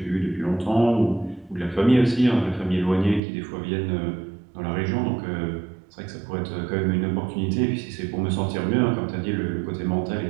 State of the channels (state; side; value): drops out; left; at 3.2 s